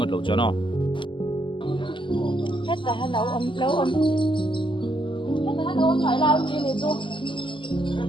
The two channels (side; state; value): right; late; 0.24 ms